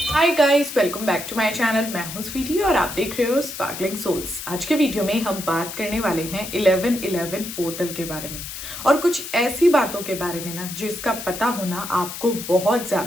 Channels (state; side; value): noise; left; hiss, 9 dB below the sound